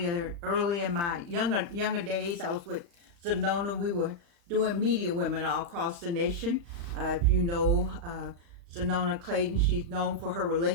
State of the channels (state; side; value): late; left; 35 ms